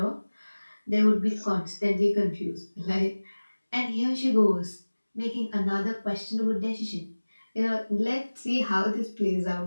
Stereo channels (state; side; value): inverted; both; correlation -1.00